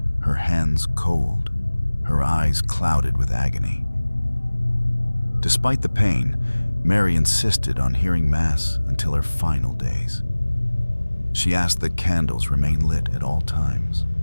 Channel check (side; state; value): both; inverted; correlation -1.00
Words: her hands cold, her eyes clouded with agony." Despite the pain, Mary insisted on hearing Mass until her final days. She asked that candles remain lit at all times.